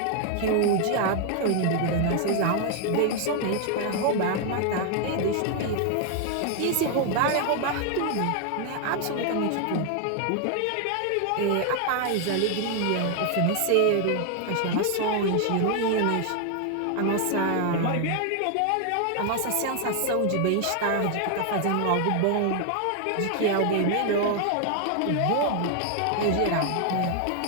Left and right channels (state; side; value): different; both; correlation 0.00